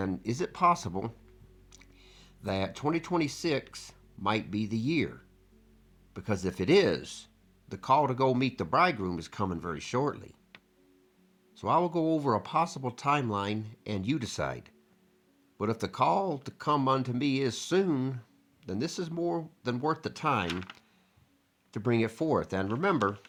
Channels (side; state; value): both; identical; correlation 1.00